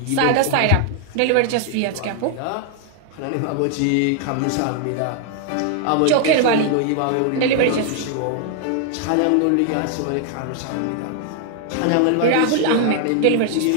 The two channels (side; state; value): both; different; correlation 0.00